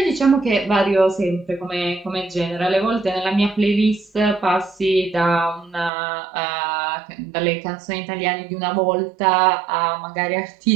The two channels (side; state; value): left; drops out; at 5.9 s